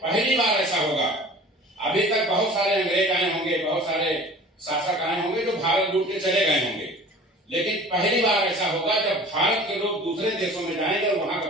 बार ऐसा होगा, अभी तक बहुत सारे अंग्रेज आए होंगे, बहुत सारे शासक आए होंगे जो भारत लूट के चले गए होंगे, लेकिन पहली बार ऐसा होगा जब भारत के लोग दूसरे देशों में जाएंगे और वहां का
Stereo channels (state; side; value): normal; both; correlation 0.43